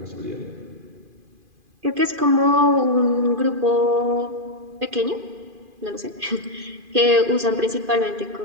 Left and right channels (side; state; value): left; late; 2.5 ms